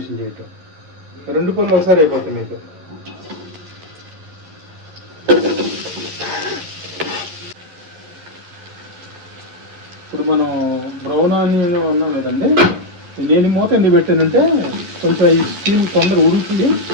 చేయటం, రెండు పనులు ఒకసారి అయిపోతాయి మీకు. ఇప్పుడు మనం బ్రౌన్ ఆనియన్ ఉన్నాం కదండి, నేను మూత ఎందుకు పెట్టానంటే కొంచెం ఈ స్టీమ్ తొందర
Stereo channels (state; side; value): late; left; 11 ms